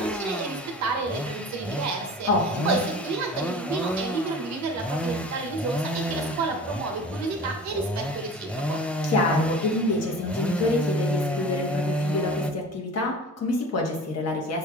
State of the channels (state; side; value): normal; both; correlation 0.39